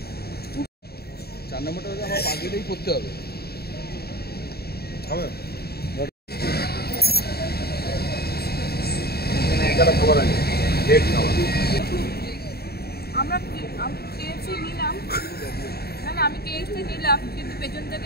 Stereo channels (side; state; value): right; late; 0.46 ms